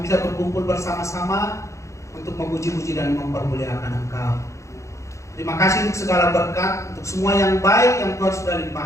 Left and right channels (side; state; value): right; late; 0.15 ms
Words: bisa berkumpul bersama-sama untuk memuji-puji dan mempermuliakan Engkau. Terima kasih untuk segala berkat, untuk semua yang baik yang Tuhan sudah